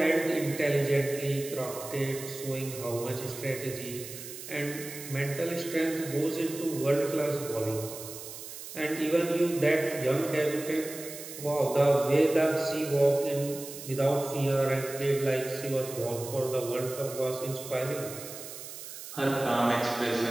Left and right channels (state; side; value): noise; right; hiss, 11 dB below the sound